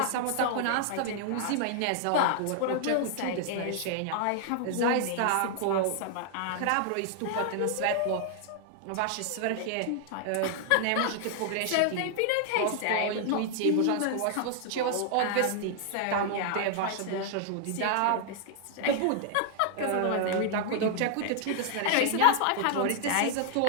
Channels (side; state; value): both; different; correlation 0.00